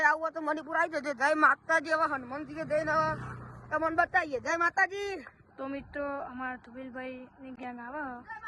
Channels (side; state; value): both; identical; correlation 1.00